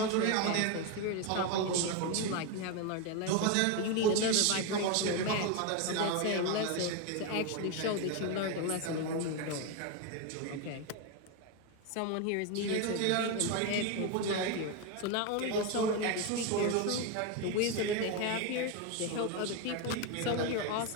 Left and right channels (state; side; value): different; both; correlation 0.02